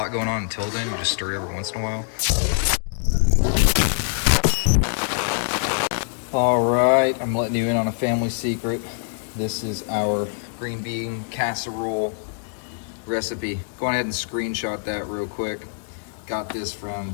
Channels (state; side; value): silent; right; digital silence